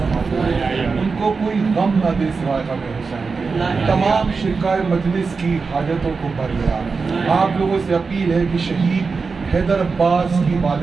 उनको कोई गम न दे सिवाय गम हुसैन, तमाम शिरकाए मजलिस की हाजतों को भर गया। आप लोगों से अपील है कि शहीद हैदर अब्बास की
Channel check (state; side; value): quieter; left; 4.7 dB